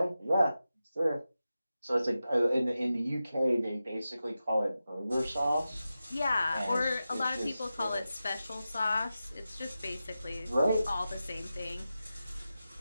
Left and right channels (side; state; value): both; inverted; correlation -0.92